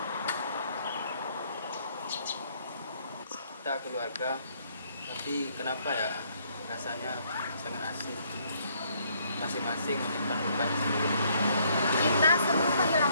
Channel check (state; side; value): inverted; both; correlation -0.67